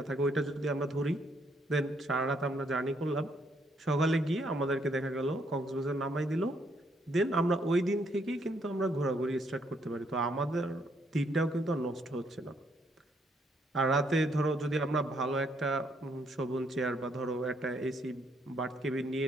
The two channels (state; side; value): normal; both; correlation 0.71